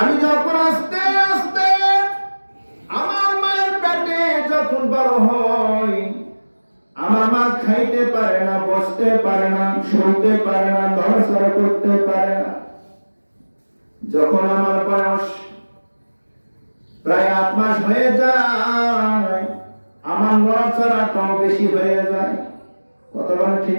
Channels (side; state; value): both; inverted; correlation -1.00